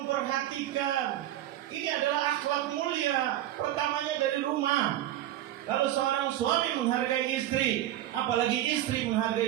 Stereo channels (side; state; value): left; quieter; 13.3 dB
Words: ini adalah akhlak mulia. Pertamanya dari rumah. Kalau seorang suami menghargai istri, apalagi istri